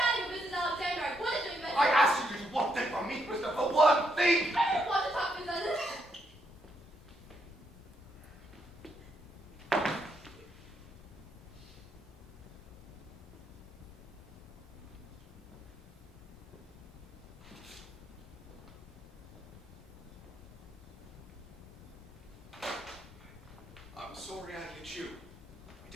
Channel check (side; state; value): both; normal; correlation 0.77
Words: with Mrs. Alexander. I wanted to invent. I asked you to do one thing for me, Christopher. One thing! I didn't want to talk to Mrs. I'm sorry I hit you. I